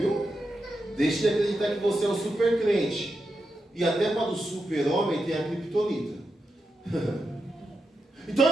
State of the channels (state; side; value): normal; both; correlation 0.87